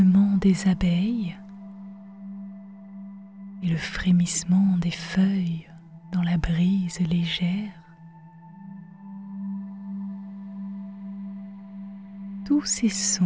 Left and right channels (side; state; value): both; identical; correlation 1.00